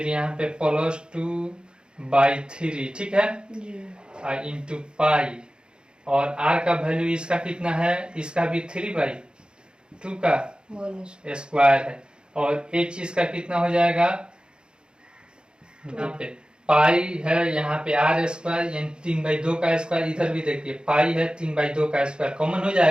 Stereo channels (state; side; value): late; left; 0.050 ms